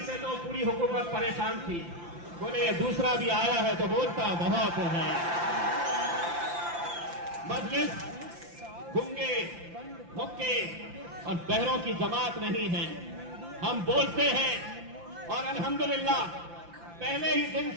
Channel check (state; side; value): late; left; 5.8 ms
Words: से तो पूरी हुकूमत परेशान थी। बोले ये दूसरा भी आया है तो बोलता बहुत है। मजलिस गूंगे, मुक्के और बहरों की जमात नहीं है। हम बोलते हैं और अल्हम्दुलिल्लाह पहले ही दिन